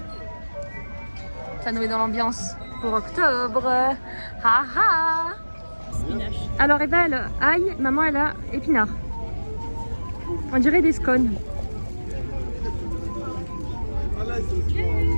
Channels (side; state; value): both; inverted; correlation -1.00